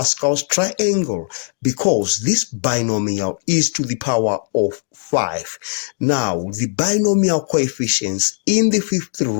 triangle because this binomial is to the power of 5. Now, the binomial coefficients in the fifth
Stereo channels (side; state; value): right; silent; digital silence